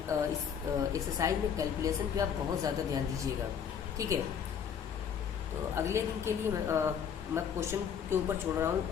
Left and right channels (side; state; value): right; quieter; 7.8 dB